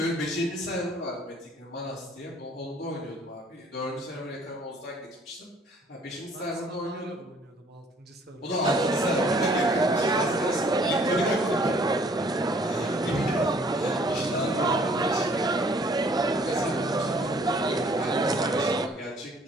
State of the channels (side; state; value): both; normal; correlation 0.58